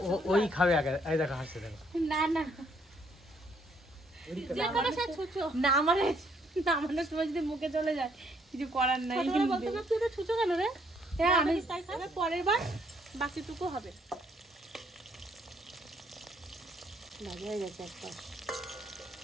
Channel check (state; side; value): normal; both; correlation 0.68